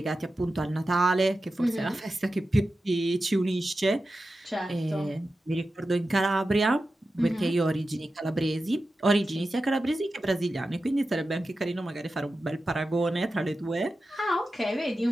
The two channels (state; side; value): normal; both; correlation 0.92